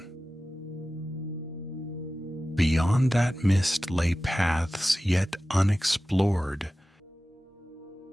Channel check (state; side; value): normal; both; correlation 0.95